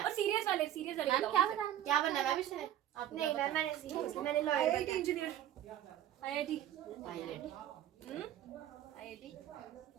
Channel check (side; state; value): left; quieter; 11.9 dB